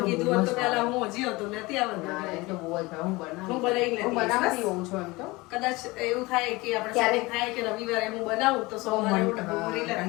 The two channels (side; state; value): right; quieter; 22.6 dB